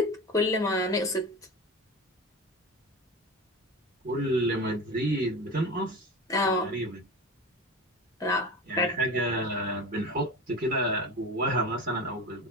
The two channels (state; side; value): normal; both; correlation 0.29